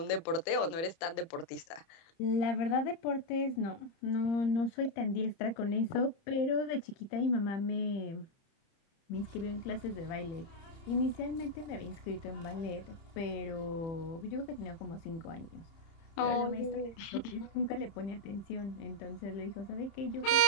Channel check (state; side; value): late; right; 30 ms